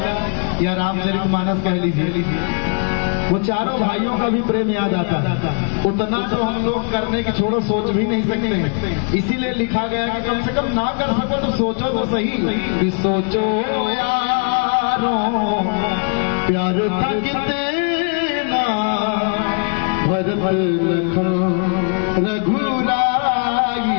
या रामचरितमानस कह लीजिए, वो चारों भाइयों का भी प्रेम याद आता है। उतना तो हम लोग करने की छोड़ो सोच भी नहीं सकते, इसीलिए लिखा गया कि कम से कम ना कर सको तो सोचो तो सही कि सोचो यारों प्यार था कितना भरत लखन रघुराई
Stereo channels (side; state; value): right; quieter; 40.0 dB